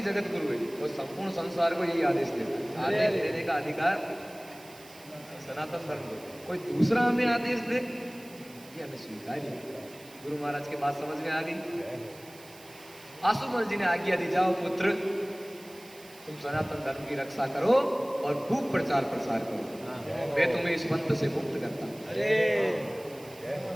जगत गुरु है और संपूर्ण संसार को यही आदेश देता है। आदेश देने का अधिकार सनातन धर्म को, कोई दूसरा हमें आदेश दे ये हमें स्वीकार्य। गुरु महाराज की बात समझ में आ गई। आसुमल जी ने आज्ञा दी, जाओ पुत्र तुम सनातन धर्म की रक्षा करो और खूब प्रचार प्रसार करो, मैं तुम्हें इस पंथ से मुक्त करता हूं।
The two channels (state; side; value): noise; right; hiss, 21 dB below the sound